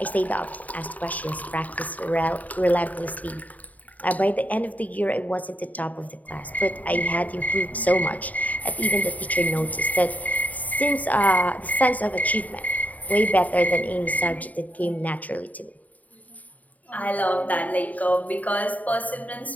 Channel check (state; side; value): late; right; 0.074 ms